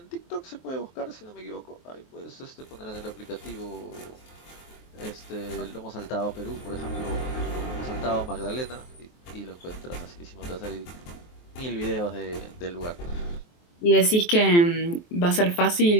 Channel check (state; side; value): late; right; 23 ms